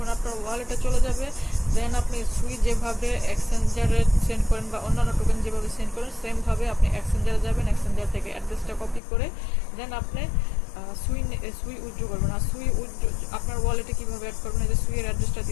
আপনার ওয়ালেটে চলে যাবে, দেন আপনি সুই যেভাবে এক্সচেঞ্জারে সেন্ড করেন বা অন্যান্য টোকেন যেভাবে সেন্ড করেন, সেমভাবে আপনি এক্সচেঞ্জারে যাবেন। এক্সচেঞ্জার থেকে অ্যাড্রেসটা কপি করে দেন আপনি সুই উইথড্র করবেন। আর সুই উইথড্র আপনার ওয়ালেটে কীভাবে অ্যাড করবেন, এই যে সুইয়ের অ্যাড্রেসটা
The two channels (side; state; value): right; drops out; at 9.0 s